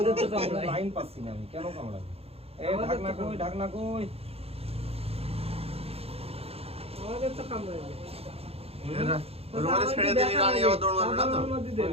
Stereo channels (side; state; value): left; late; 0.29 ms